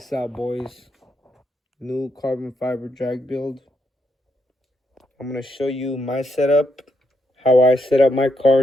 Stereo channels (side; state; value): both; normal; correlation 0.78